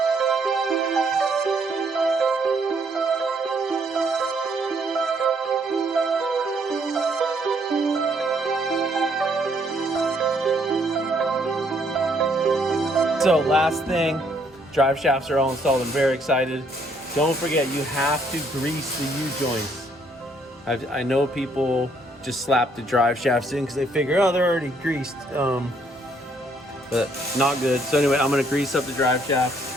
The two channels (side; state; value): both; normal; correlation 0.68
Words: So last thing, drive shafts are all installed. I'm very excited. Don't forget, you have to grease the U-joints. I know people just slap the drive shafts in because they figure, oh, they're already greased. But not good. So anyway, I'm gonna grease up the drive